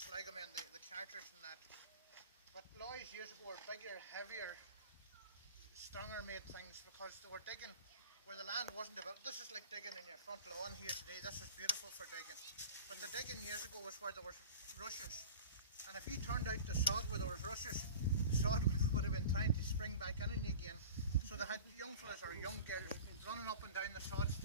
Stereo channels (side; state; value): both; inverted; correlation -0.38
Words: the carters and that. But Loys years ago were bigger, heavier, stronger made things because they were digging where the land wasn't developed. This is like digging in your front lawn here today. This is beautiful for digging. But the digging years ago was where there was rushes. And if you turned out the sod where there was rushes, the sod would have been trying to spring back in again. So they had young fellas or young girls running up and down the sods